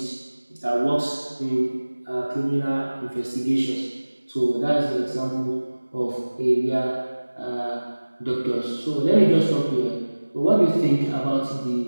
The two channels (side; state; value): both; inverted; correlation -1.00